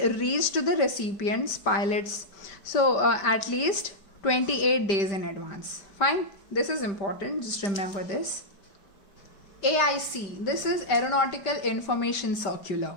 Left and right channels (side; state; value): right; late; 5.1 ms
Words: reached to the recipients, pilots, so at least 28 days in advance. Fine, this is important, just remember this. AIC, this is Aeronautical Information Circular.